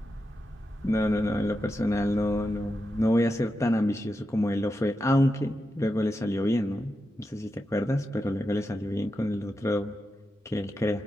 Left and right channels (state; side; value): normal; both; correlation 0.88